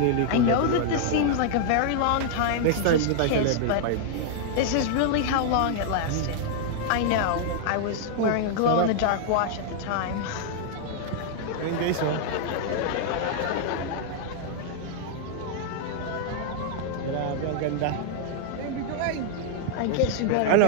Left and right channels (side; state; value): both; different; correlation -0.01